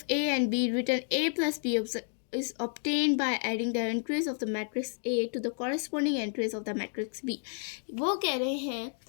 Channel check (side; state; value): right; silent; 57 dB below the other